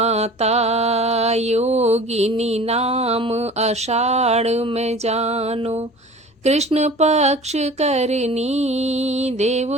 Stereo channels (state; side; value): normal; both; correlation 0.41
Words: योगिनी नाम आषाढ़ में जानो, कृष्ण पक्ष करनी,